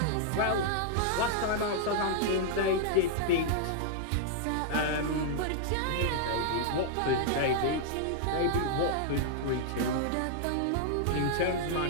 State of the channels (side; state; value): both; different; correlation -0.01